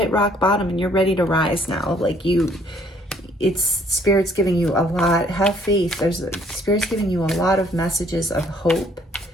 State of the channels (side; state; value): both; normal; correlation 0.62